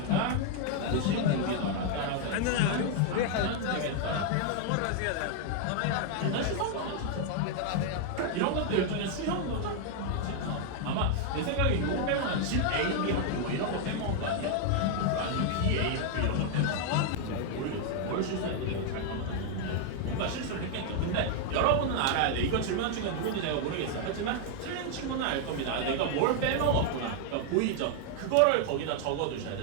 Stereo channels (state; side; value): different; both; correlation 0.00